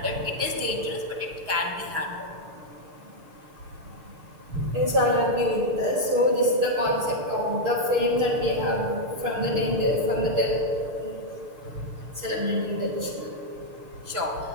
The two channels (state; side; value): late; left; 6.7 ms